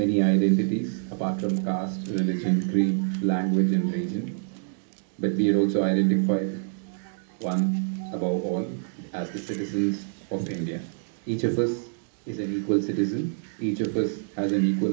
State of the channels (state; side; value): silent; left; 61 dB below the other